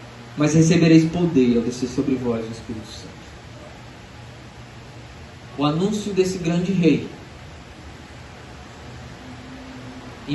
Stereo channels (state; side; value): identical; both; correlation 1.00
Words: Mas recebereis poder ao descer sobre vós o Espírito Santo. O anúncio desse grande rei